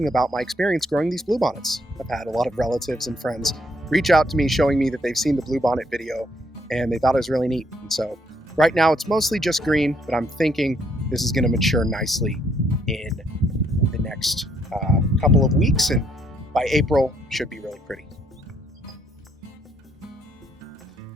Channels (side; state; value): both; normal; correlation 0.70